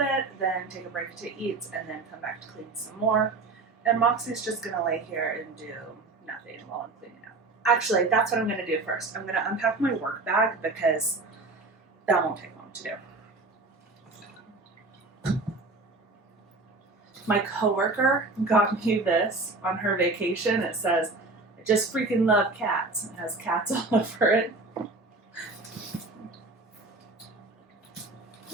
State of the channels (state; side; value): quieter; left; 3.4 dB